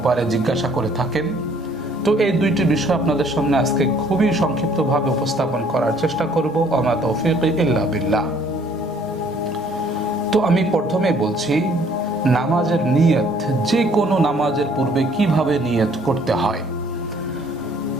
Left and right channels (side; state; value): both; normal; correlation 0.60